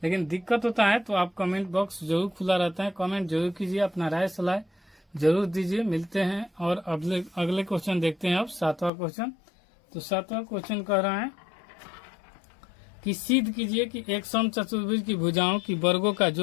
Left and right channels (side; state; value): right; drops out; at 8.9 s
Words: लेकिन दिक्कत होता है तो आप कमेंट बॉक्स जरूर खुला रहता है, कमेंट जरूर कीजिए, अपना राय सलाह जरूर दीजिए। मिलते हैं और अगले क्वेश्चन देखते हैं। अब 7वां क्वेश्चन। तो 7वां क्वेश्चन कह रहा है कि सिद्ध कीजिए कि एक समचतुर्भुज की भुजाओं की वर्गों का